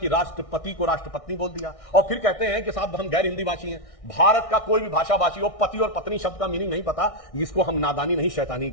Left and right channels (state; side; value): late; right; 1.6 ms